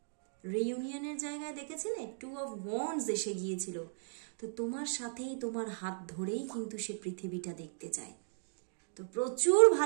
রিইউনিয়নের জায়গায় দেখেছিলে 2 অফ ওয়ান্ডস এসে গিয়েছিল, তো তোমার সাথেই তোমার হাত ধরেই কিন্তু সে পৃথিবীটা দেখতে চায়। তো প্রচুর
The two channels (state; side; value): silent; left; digital silence